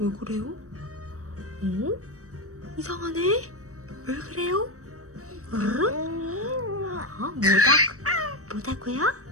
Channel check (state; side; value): late; left; 0.65 ms